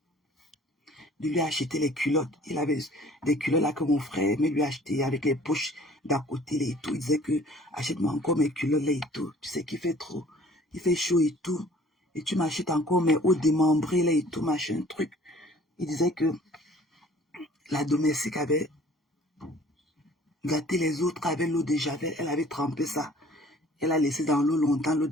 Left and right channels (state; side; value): normal; both; correlation 0.52